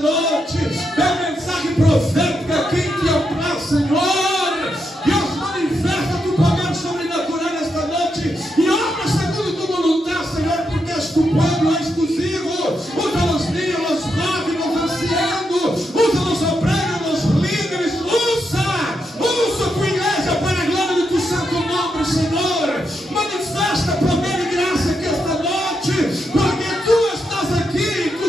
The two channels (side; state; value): both; normal; correlation 0.83